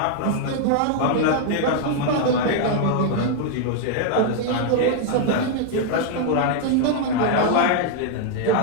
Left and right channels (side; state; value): both; different; correlation 0.00